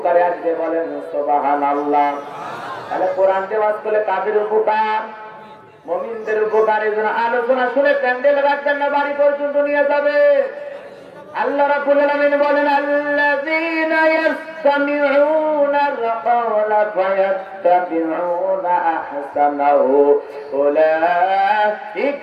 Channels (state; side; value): identical; both; correlation 1.00